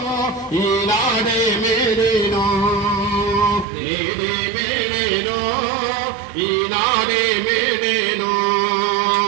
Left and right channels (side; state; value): left; drops out; at 3.7 s